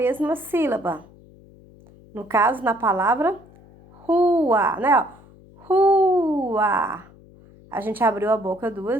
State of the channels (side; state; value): left; noise; hum, 24 dB below the sound